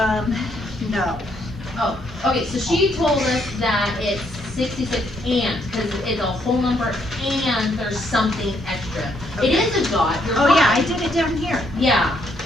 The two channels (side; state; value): both; normal; correlation 0.72